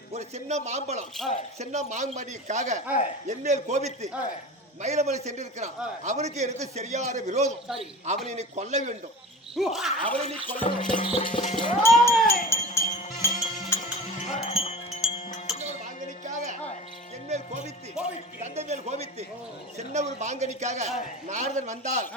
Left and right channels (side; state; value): both; normal; correlation 0.34